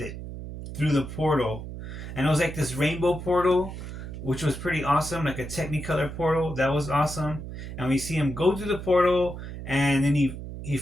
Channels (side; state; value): right; noise; hum, 9 dB below the sound